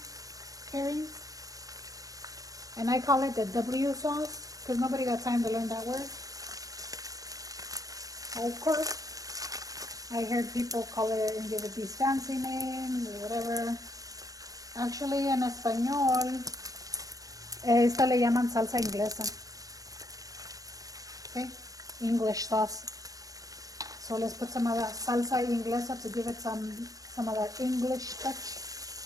And I call it the W sauce because nobody got time to learn that word. Of course. I heard people call it and give it these fancy names or whatever. Actually, en español, esta le llaman salsa inglesa. Okay? English sauce. So let's put some of that salsa inglesa to give it some of that English touch.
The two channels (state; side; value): late; left; 0.17 ms